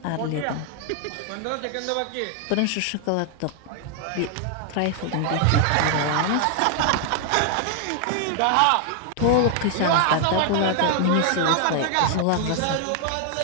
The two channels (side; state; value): both; different; correlation 0.00